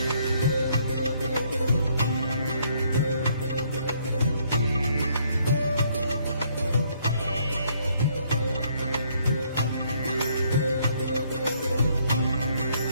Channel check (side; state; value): both; inverted; correlation -0.68